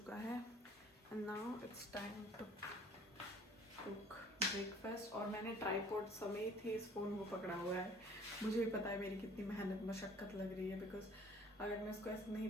है। And now it's time to cook breakfast. और मैंने ट्राईपॉड समेत ही इस फ़ोन को पकड़ा हुआ है। मुझे भी पता है मेरी कितनी मेहनत मशक्क़त लग रही है, बिकॉज अगर मैं इसको ऐसे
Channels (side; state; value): both; normal; correlation 0.53